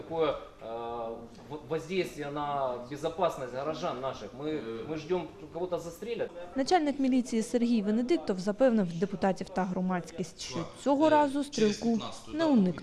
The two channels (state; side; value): identical; both; correlation 1.00